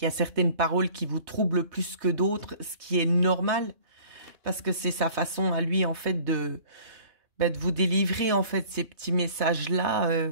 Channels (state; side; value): late; left; 3.2 ms